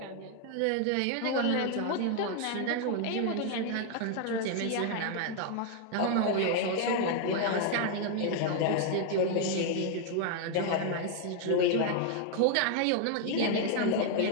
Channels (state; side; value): different; both; correlation 0.00